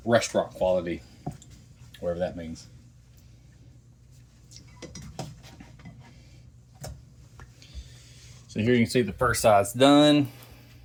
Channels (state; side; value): identical; both; correlation 1.00